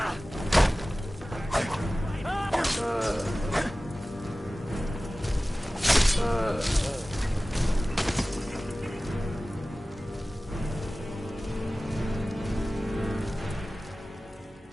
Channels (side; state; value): both; normal; correlation 0.97